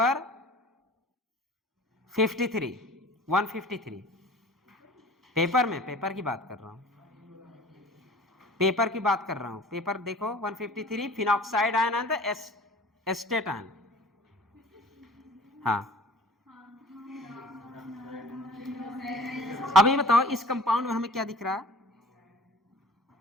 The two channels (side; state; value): both; normal; correlation 0.45